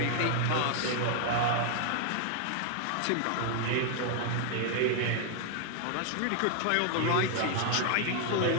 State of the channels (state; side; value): different; both; correlation 0.00